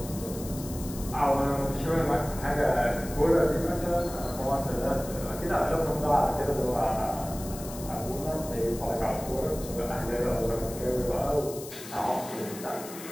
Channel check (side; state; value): left; noise; hiss, 13 dB below the sound